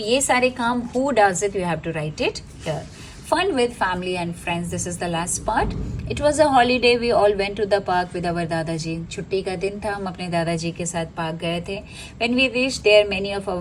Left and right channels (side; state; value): both; identical; correlation 1.00